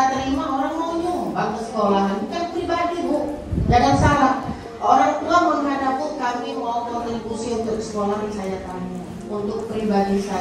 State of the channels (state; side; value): identical; both; correlation 1.00